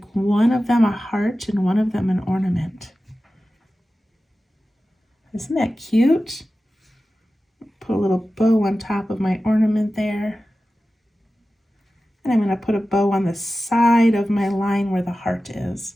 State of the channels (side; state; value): both; normal; correlation 0.95